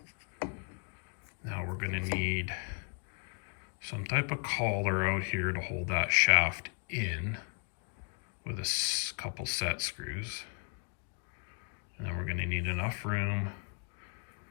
Now we're going to need some type of collar out here to hold that shaft in with a couple set screws. And then we're going to need enough room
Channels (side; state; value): right; quieter; 39.1 dB